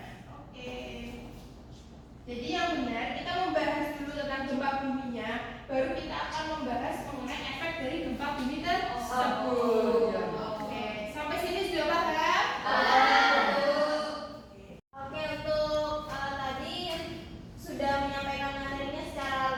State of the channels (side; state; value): both; identical; correlation 1.00